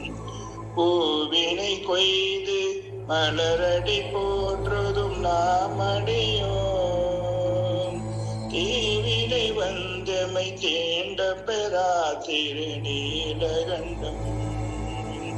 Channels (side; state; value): both; identical; correlation 1.00